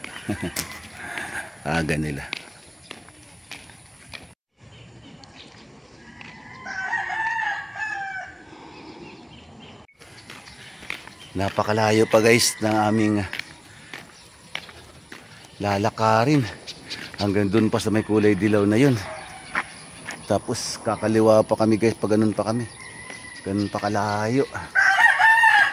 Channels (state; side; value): identical; both; correlation 1.00